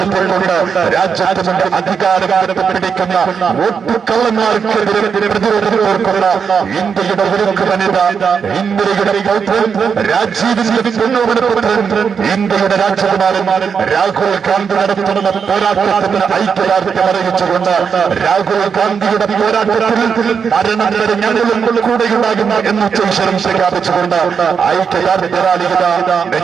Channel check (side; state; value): left; quieter; 6.4 dB